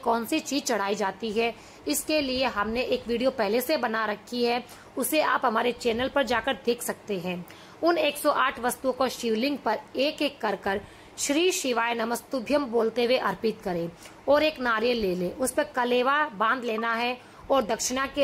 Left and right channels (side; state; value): both; identical; correlation 1.00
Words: सी चीज चढ़ाई जाती है, इसके लिए हमने एक वीडियो पहले से बना रखी है, उसे आप हमारे चैनल पर जाकर देख सकते हैं। उन 108 वस्तुओं को शिवलिंग पर एक एक कर श्री शिवाय नमस्तुभ्यम बोलते हुए अर्पित करें और एक नारियल ले ले, उस पर कलेवा बांध लेना है और दक्षिणा